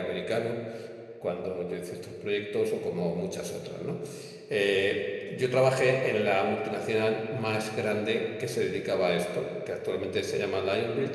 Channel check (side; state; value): both; identical; correlation 1.00